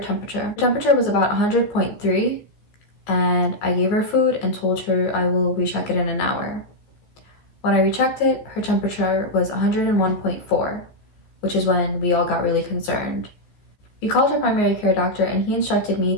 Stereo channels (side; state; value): right; late; 14 ms